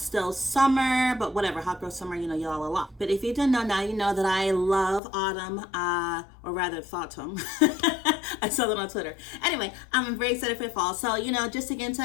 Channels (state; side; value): drops out; right; at 5.0 s